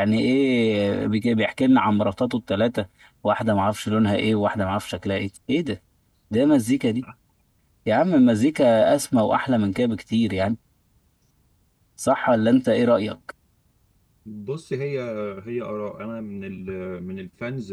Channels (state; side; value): identical; both; correlation 1.00